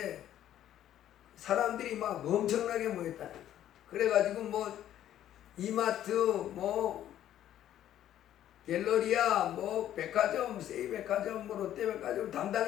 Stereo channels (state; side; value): quieter; right; 11.7 dB